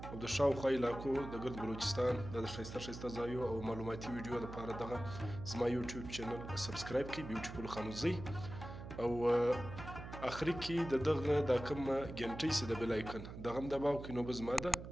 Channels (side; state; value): right; noise; hum, 10 dB below the sound